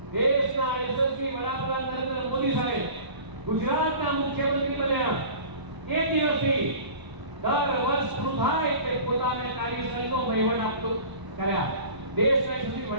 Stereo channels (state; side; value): late; left; 1.0 ms